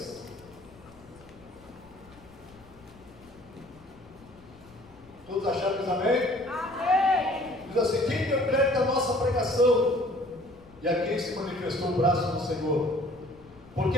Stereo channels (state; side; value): noise; left; rumble, 24 dB below the sound